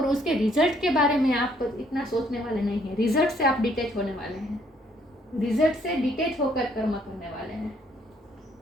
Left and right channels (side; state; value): both; normal; correlation 0.66